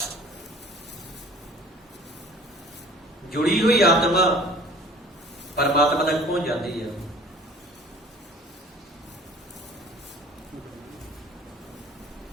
ਜੁੜੀ ਹੋਈ ਆਤਮਾ ਪਰਮਾਤਮਾ ਤੱਕ ਪਹੁੰਚ ਜਾਂਦੀ ਹੈ।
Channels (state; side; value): normal; both; correlation 0.48